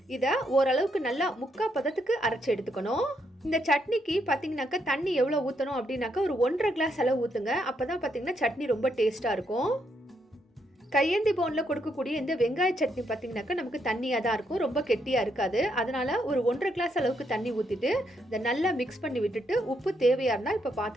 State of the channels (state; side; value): normal; both; correlation 0.77